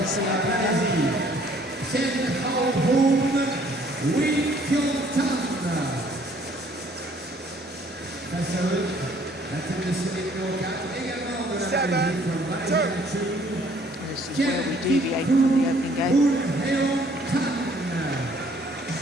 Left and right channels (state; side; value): normal; both; correlation 0.60